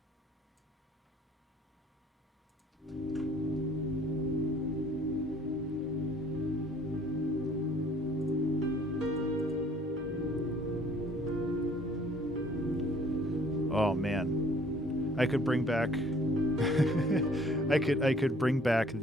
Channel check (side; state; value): both; normal; correlation 0.57